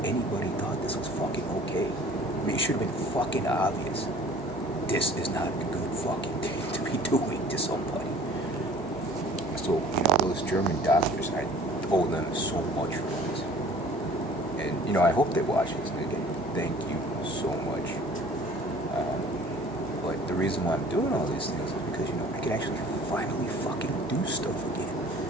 anybody thought this was fucking okay. I mean, it should have been fucking obvious. This is not a good fucking thing to be doing to somebody. So, those German doctors, I owe them so much for this. And, I hope they watch this. And again, thank you so much. But the reason why I'm doing all these things is because, I can actually finally fucking do stuff again.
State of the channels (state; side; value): normal; both; correlation 0.49